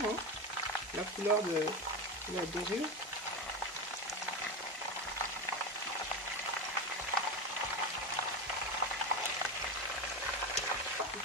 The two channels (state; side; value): normal; both; correlation 0.19